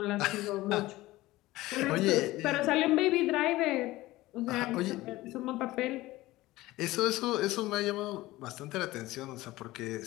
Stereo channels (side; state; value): right; quieter; 18.1 dB